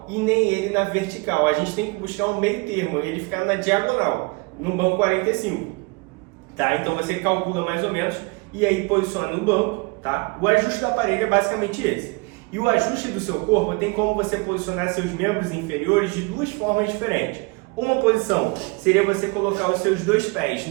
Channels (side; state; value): left; quieter; 28.4 dB